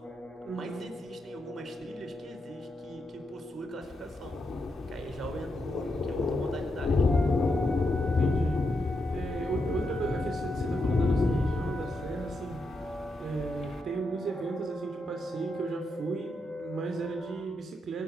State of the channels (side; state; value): both; normal; correlation 0.83